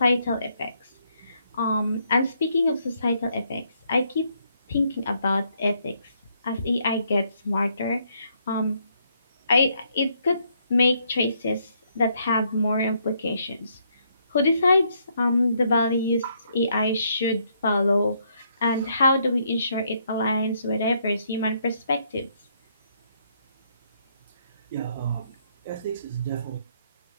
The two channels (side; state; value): both; inverted; correlation -0.72